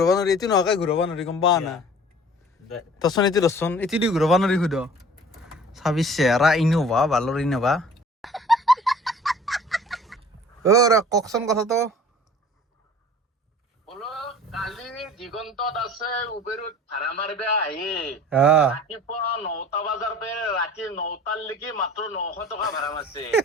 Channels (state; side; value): normal; both; correlation 0.46